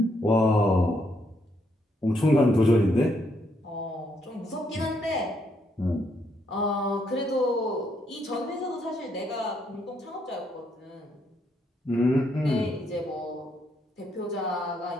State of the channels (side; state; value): both; normal; correlation 0.74